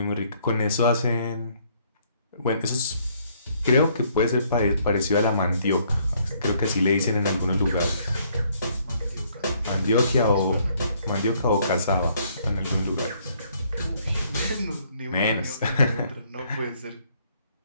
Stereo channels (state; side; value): inverted; both; correlation -0.66